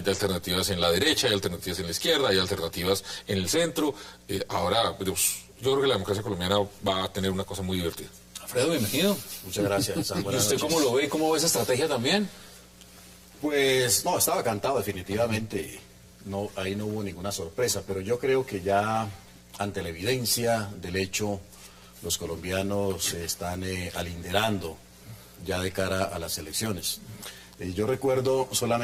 en la derecha, hay alternativas en la izquierda, hay alternativas en el centro. Ahora, pues, yo creo que la democracia colombiana va a tener una cosa muy divertida. Alfredo, bienvenido. Muchas gracias. ¿Y usted cómo lo ve? ¿Cómo ve esa estrategia también? Pues no, estaba cantado definitivamente. No, ahí no hubo ninguna sorpresa, pero yo creo que ya ante la evidencia del hecho, los colombianos se están alinderando ya de cara a las elecciones. Yo recuerdo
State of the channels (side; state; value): both; identical; correlation 1.00